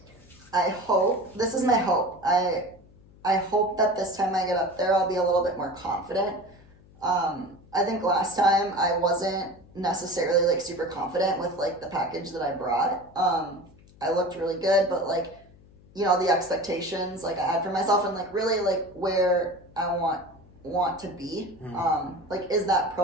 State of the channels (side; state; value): left; noise; hum, 25 dB below the sound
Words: This is my hope. I hope that this time I get up there, I'll be a little bit more confident. I think last time I wasn't necessarily like super confident with like the package that I brought. I looked really good, but like, the expectations like I had for myself and like really like where I want to be, like is that